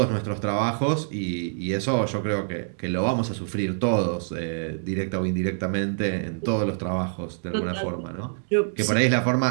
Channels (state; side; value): silent; left; digital silence